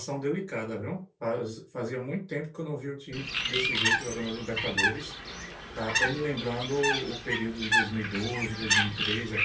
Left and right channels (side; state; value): both; identical; correlation 1.00